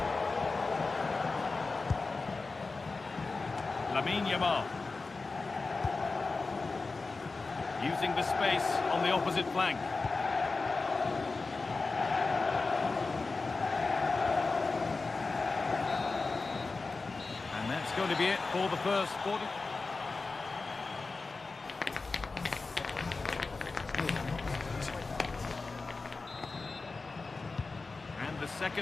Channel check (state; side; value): quieter; right; 3.9 dB